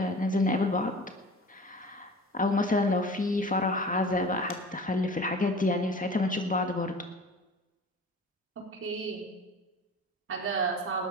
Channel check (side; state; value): both; normal; correlation 0.40